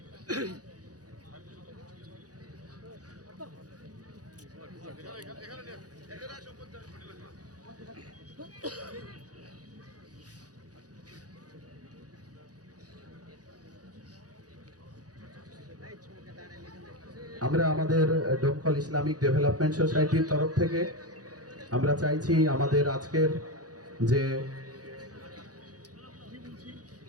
আমরা আমাদের দমকল ইসলামিক ডেভেলপমেন্ট সোসাইটির তরফ থেকে আমরা চাইছি আমাদের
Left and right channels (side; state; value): left; late; 0.68 ms